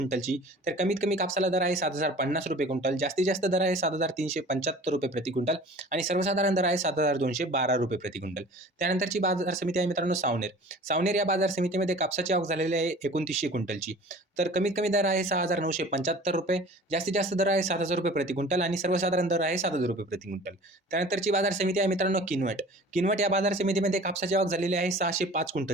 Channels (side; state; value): both; normal; correlation 0.44